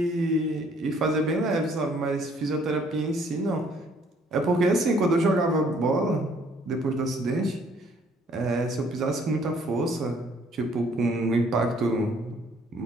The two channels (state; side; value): normal; both; correlation 0.62